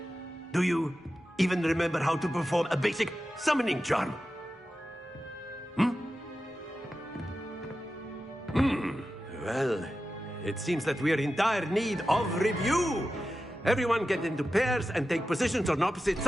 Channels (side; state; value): both; normal; correlation 0.92